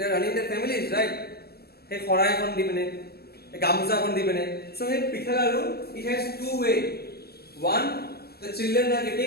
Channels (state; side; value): late; right; 0.46 ms